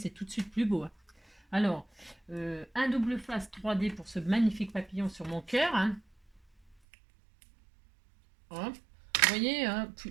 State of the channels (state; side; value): drops out; left; at 6.8 s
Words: tout de suite plus beau. Hein. Alors, un double face 3D pour ce magnifique papillon sur mon cœur. Hein. Hop. Vous voyez, hein,